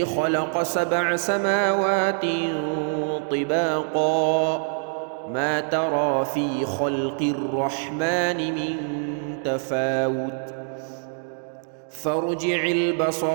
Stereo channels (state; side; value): silent; left; digital silence